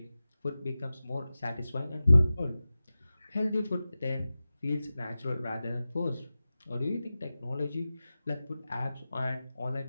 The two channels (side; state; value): both; inverted; correlation -0.95